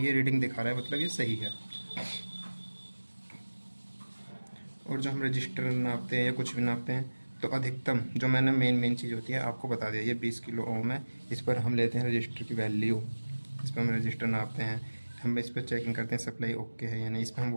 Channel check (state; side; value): inverted; both; correlation -1.00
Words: रीडिंग दिखा रहा है, मतलब ये सही है। और जो हम रजिस्टर नापते हैं या कुछ भी नापते हैं तो अधिकतम जो मैंने मेन चीज़ होती है आपको बता दिया, ये 20 किलो ओम है। इस पर हम लेते हैं रजिस्टर की वैल्यू, इस पर हम रजिस्टर नापते हैं, हम इस पर चेकिंग करते हैं सप्लाई ओके है या नहीं, इस पर हम